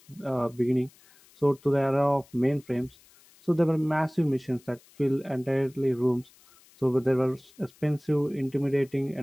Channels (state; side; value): noise; left; hiss, 28 dB below the sound